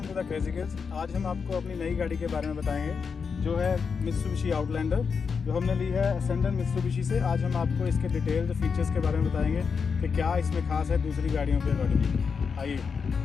to the crazy kids. आज हम आपको अपनी नई गाड़ी के बारे में बताएंगे जो है मित्सुबिशी आउटलैंडर, जो हमने ली है असेंडर मित्सुबिशी से। आज हम आपको इसके डिटेल्ड फीचर्स के बारे में बताएंगे कि क्या इसमें खास है दूसरी गाड़ियों के अकॉर्डिंग। आइए,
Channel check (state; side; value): quieter; right; 5.7 dB